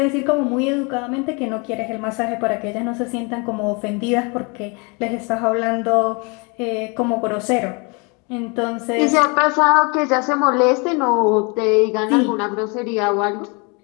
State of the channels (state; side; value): quieter; right; 31.3 dB